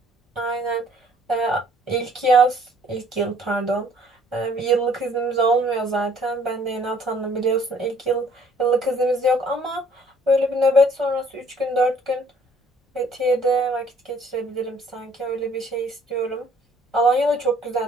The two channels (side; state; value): both; normal; correlation 0.59